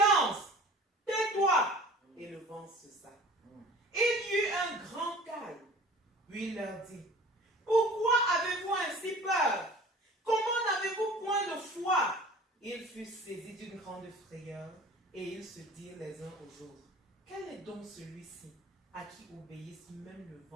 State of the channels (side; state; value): both; normal; correlation 0.44